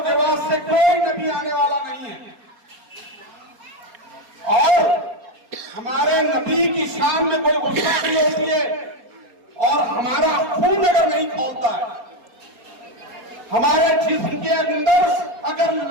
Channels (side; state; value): left; late; 4.3 ms